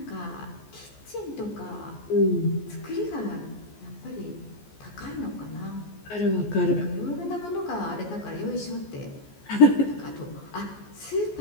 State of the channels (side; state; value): right; late; 14 ms